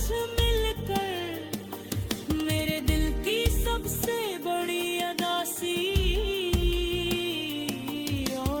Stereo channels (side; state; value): both; identical; correlation 1.00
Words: मिलकर मेरे दिल की सबसे बड़ी अदासी।